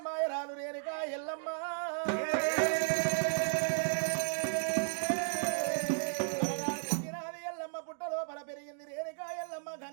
రేణుక ఎల్లమ్మ ఎల్లమ్మ పుట్ట లోపల పెరిగింది రేణుక ఎల్లమ్మ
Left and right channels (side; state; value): left; silent; digital silence